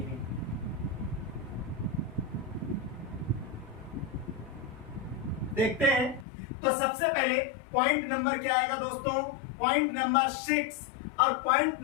देखते हैं। तो सबसे पहले पॉइंट नंबर क्या आएगा दोस्तों, पॉइंट नंबर 6। और पॉइंट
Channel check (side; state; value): right; drops out; at 6.2 s